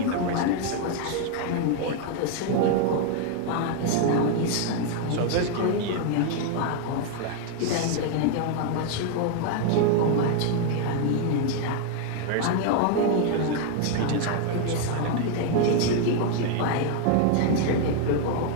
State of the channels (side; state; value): both; different; correlation 0.00